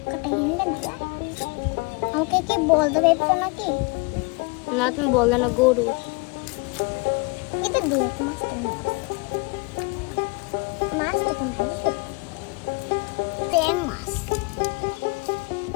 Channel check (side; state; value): right; quieter; 28.5 dB